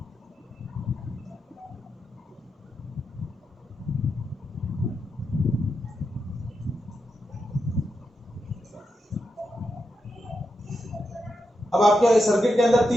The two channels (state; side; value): normal; both; correlation 0.86